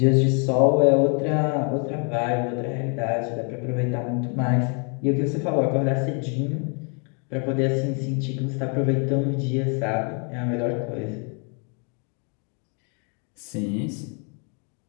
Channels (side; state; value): right; quieter; 38.1 dB